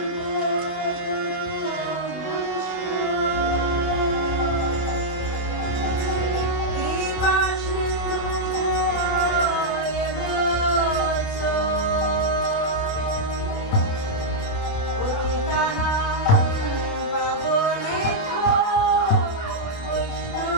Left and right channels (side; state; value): right; late; 28 ms